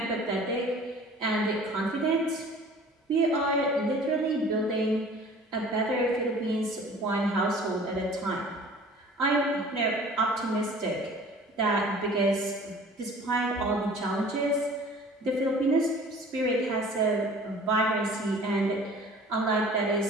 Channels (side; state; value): both; normal; correlation 0.47